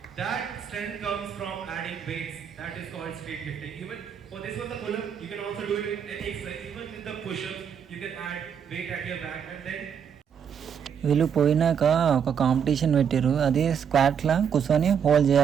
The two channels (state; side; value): quieter; left; 7.7 dB